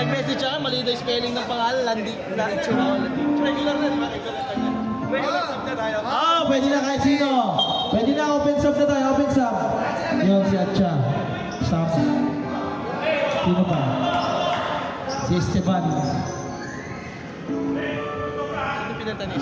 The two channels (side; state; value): both; identical; correlation 1.00